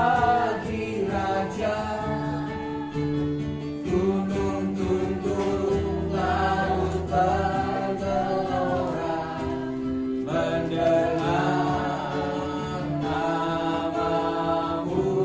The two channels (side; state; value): both; identical; correlation 1.00